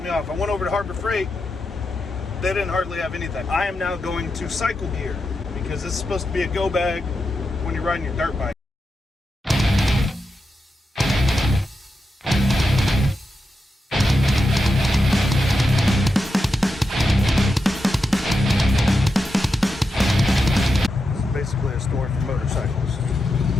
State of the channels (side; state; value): both; normal; correlation 0.88